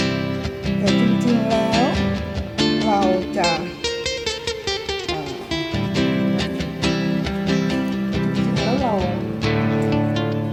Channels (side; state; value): both; identical; correlation 1.00